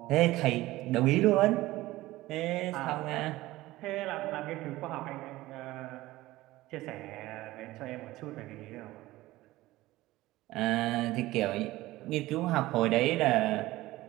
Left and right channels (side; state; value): left; quieter; 17.6 dB